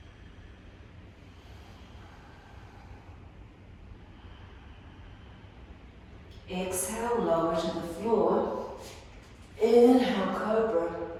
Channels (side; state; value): both; identical; correlation 1.00